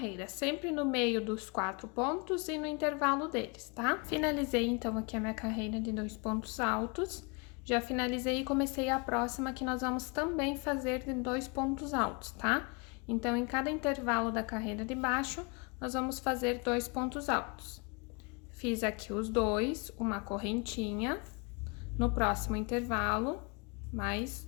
sempre no meio dos 4 pontos e no intervalo deles, tá? Finalizei então aqui a minha carreira de 2 pontos altos. Já finalizei e comecei a próxima que nós vamos também fazer de 2 pontos altos, tá? Então, em cada intervalo da carreira de baixo, nós vamos fazer 2 pontos altos. Fiz aqui os 2, uma correntinha. No próximo intervalo, mais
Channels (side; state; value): right; quieter; 31.5 dB